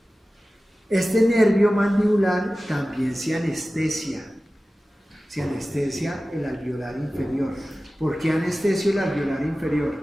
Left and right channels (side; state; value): both; normal; correlation 0.96